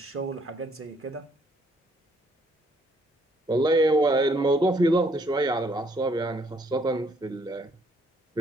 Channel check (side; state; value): both; normal; correlation 0.67